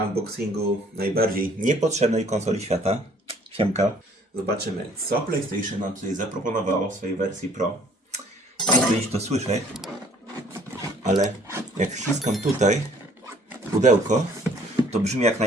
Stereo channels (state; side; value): normal; both; correlation 0.58